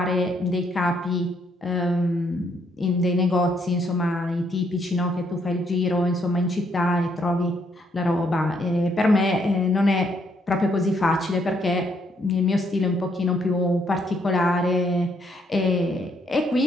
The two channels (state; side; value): normal; both; correlation 0.72